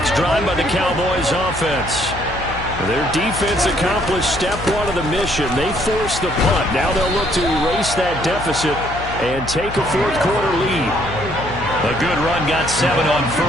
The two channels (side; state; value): left; noise; hum, 11 dB below the sound